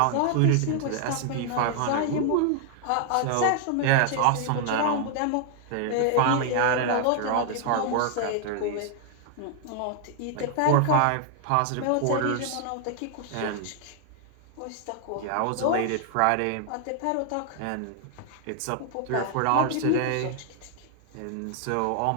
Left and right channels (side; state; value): both; different; correlation 0.00